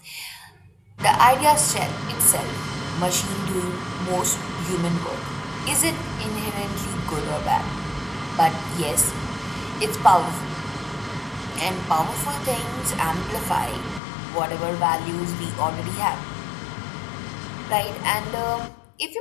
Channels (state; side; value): drops out; right; at 14.0 s